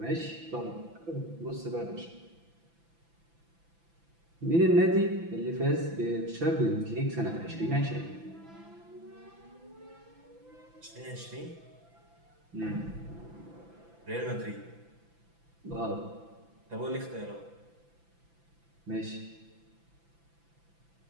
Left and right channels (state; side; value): late; left; 6.0 ms